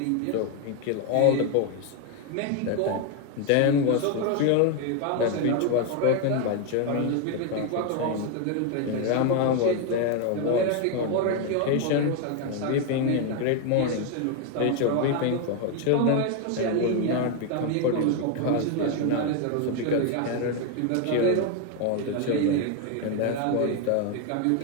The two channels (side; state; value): both; different; correlation 0.01